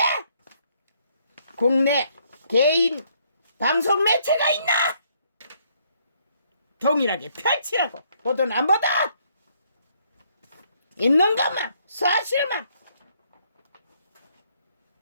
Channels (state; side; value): inverted; both; correlation -0.69